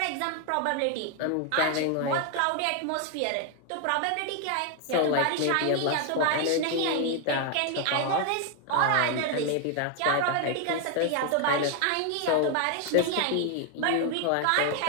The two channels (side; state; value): both; different; correlation 0.01